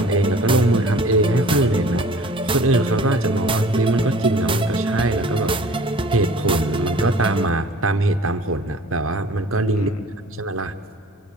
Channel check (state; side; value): normal; both; correlation 0.48